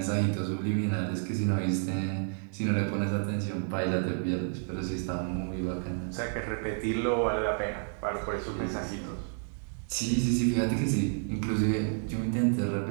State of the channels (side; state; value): left; silent; 58 dB below the other